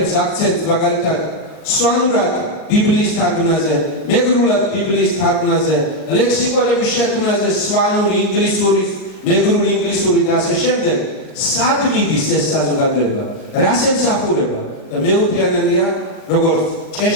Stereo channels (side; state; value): right; late; 38 ms